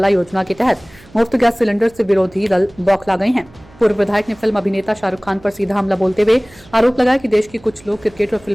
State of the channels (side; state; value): right; noise; hum, 25 dB below the sound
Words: योजना के तहत मुफ्त गैस सिलेंडर से विरोधी दल बौखला गए हैं। पूर्व विधायक ने फिल्म अभिनेता शाहरुख खान पर सीधा हमला बोलते हुए आरोप लगाया कि देश के कुछ लोग क्रिकेट और